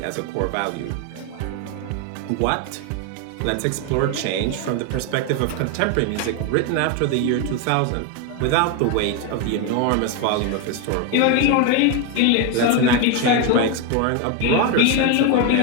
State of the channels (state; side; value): different; both; correlation 0.02